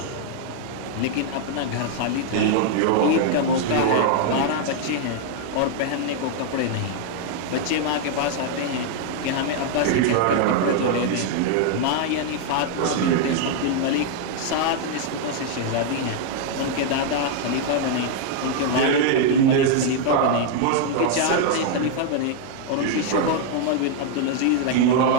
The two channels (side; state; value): both; different; correlation 0.00